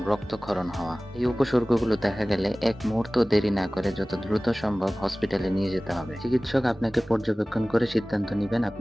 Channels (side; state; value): both; normal; correlation 0.98